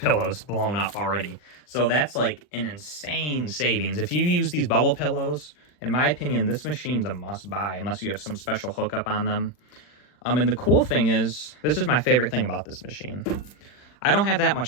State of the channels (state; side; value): late; right; 40 ms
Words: blown up already. So that's like an insane savings. If you use these bubble pillows, in my opinion, this machine's a must buy unless you have some special hookup on them. And the cool thing is, this is my favorite thing about this machine. I don't have that